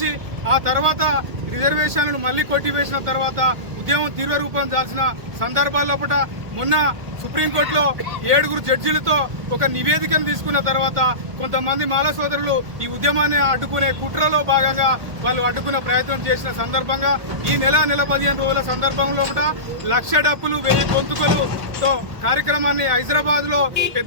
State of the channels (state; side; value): late; left; 1.5 ms